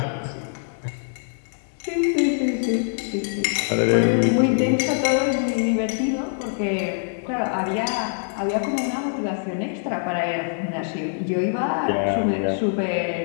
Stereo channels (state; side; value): silent; right; digital silence